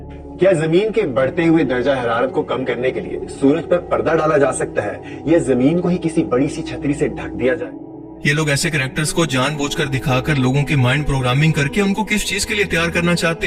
کیا زمین کے بڑھتے ہوئے درجہ حرارت کو کم کرنے کے لیے سورج پر پردہ ڈالا جا سکتا ہے یا زمین کو ہی کسی بڑی سی چھتری سے ڈھک دیا جائے؟ یہ لوگ ایسے کریکٹرز کو جان بوجھ کر دکھا کر لوگوں کی مائنڈ پروگرامنگ کر کے ان کو کس چیز کے لیے تیار کرنا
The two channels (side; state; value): both; identical; correlation 1.00